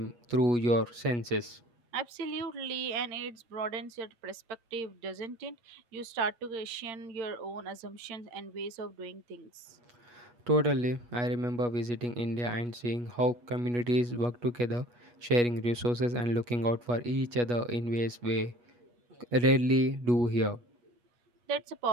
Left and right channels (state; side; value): late; left; 8.3 ms